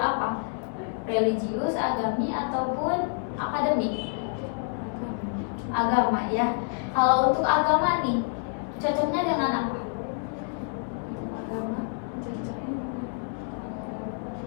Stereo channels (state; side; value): silent; right; 56 dB below the other